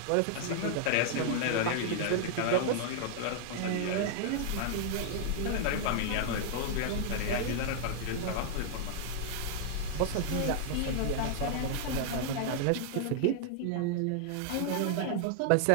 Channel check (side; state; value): both; different; correlation 0.00